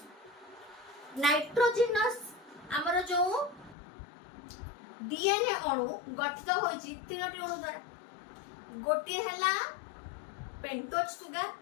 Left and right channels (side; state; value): right; drops out; at 3.8 s